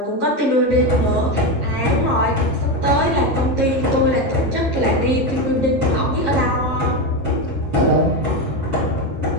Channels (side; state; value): left; late; 11 ms